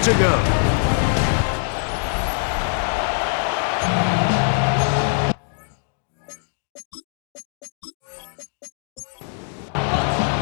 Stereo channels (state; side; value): silent; right; digital silence